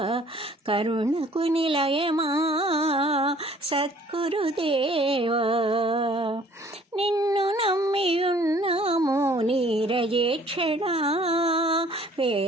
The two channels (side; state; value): both; normal; correlation 0.56